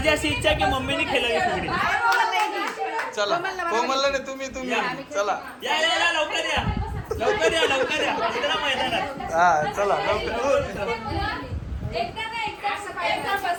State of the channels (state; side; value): identical; both; correlation 1.00